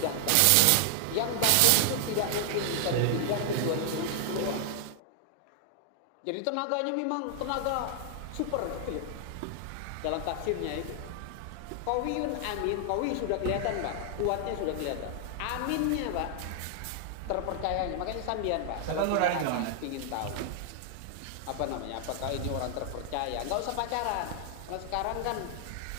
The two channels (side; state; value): both; different; correlation 0.00